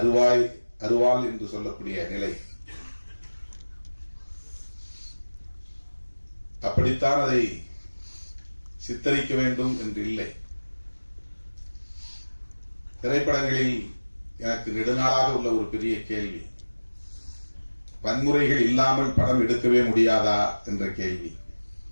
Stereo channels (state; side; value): inverted; both; correlation -1.00